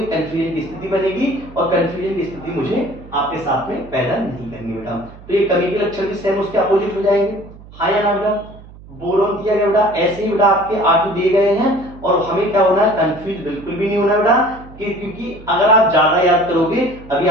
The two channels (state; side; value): noise; right; hum, 19 dB below the sound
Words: कंफ्यूजन की स्थिति बनेगी और कंफ्यूजन की स्थिति मुझे आपके साथ में पैदा नहीं करनी बेटा। तो ये कमी के लक्षण भी सेम उसके अपोजिट हो जाएंगे, हाँ या ना बेटा। बोरोन दिया गया बेटा, ऐसे ही बेटा आपके R2 दिए गए हैं और हमें क्या होना है, कंफ्यूज बिल्कुल भी नहीं होना बेटा, क्योंकि अगर आप ज्यादा याद करोगे, अभी